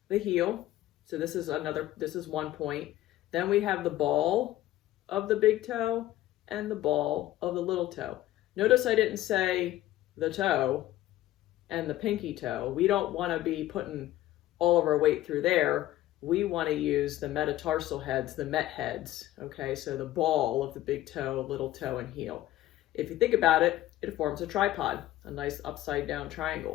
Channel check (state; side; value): quieter; right; 14.9 dB